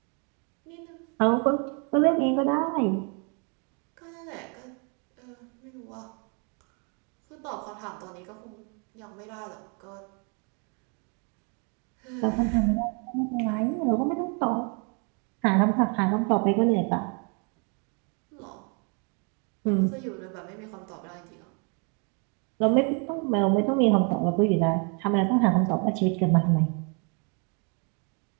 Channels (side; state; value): left; quieter; 36.4 dB